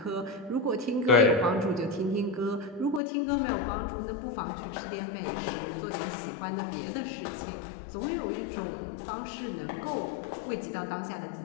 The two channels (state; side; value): drops out; right; at 3.0 s